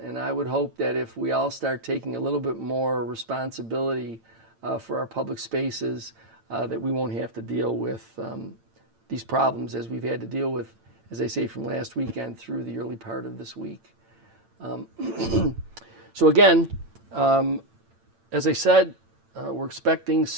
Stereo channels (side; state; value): left; late; 8.9 ms